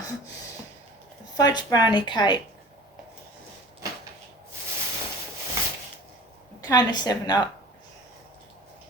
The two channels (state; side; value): normal; both; correlation 0.43